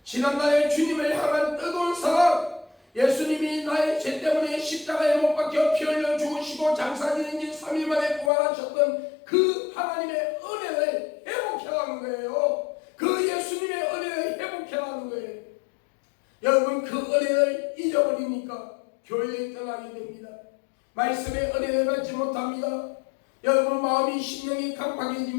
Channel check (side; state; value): right; drops out; at 8.3 s